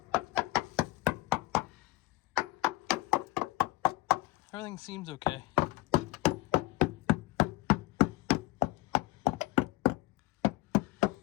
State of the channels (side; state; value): right; quieter; 19.4 dB